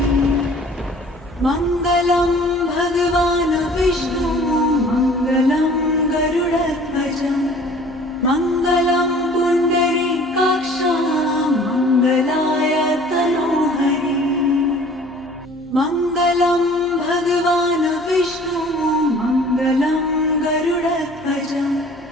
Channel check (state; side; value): normal; both; correlation 0.50